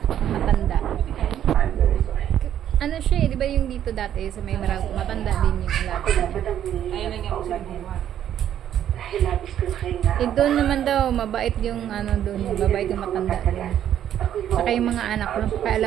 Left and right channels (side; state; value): left; quieter; 10.6 dB